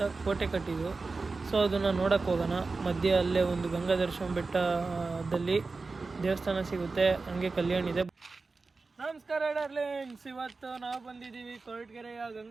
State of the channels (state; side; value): quieter; left; 3.9 dB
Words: ಕೋಟೆ ಕಟ್ಟಿದ್ರು. ಸೊ ಅದನ್ನು ನೋಡೋಕ್ಕೆ ಹೋಗೋಣ. ಮಧ್ಯೆ ಅಲ್ಲೇ ಒಂದು ಗಂಗಾಧರೇಶ್ವರ ಬೆಟ್ಟದಲ್ಲಿ ದೇವಸ್ಥಾನ ಸಿಗುತ್ತೆ, ಹಂಗೆ ಕಲ್ಯಾಣ ಇದೆ. ನಮಸ್ಕಾರ ಡಾರ್ಲಿಂಗ್ಸ್, ಇವತ್ತು ನಾವು ಬಂದಿದ್ದೀವಿ ಕೊರಟಗೆರೆಯ